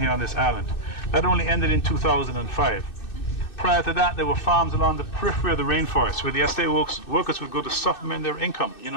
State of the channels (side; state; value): right; late; 2.6 ms